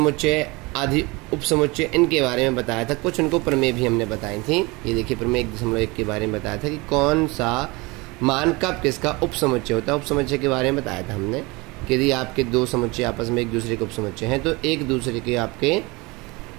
आदि उपसमुच्चय, इनके बारे में बताया था। कुछ उनको प्रमेय भी हमने बताई थी। ये देखिए, प्रमेय 1.1 के बारे में बताया था कि कौन सा मान कब किसका उपसमुच्चय होता है। उपसमुच्चय के बारे में बताया था हमने कि यदि आपके दो समुच्चय आपस में एक दूसरे के उपसमुच्चय हैं तो एक दूसरे के आपके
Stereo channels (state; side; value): quieter; left; 24.9 dB